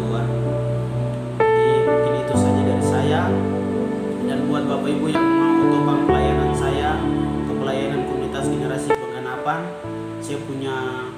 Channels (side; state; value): both; identical; correlation 1.00